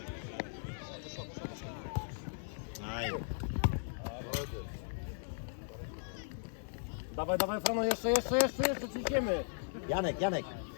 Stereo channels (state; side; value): silent; right; 53 dB below the other